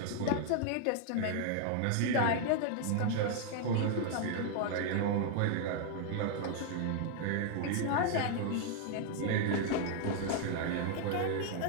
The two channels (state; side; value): different; both; correlation 0.00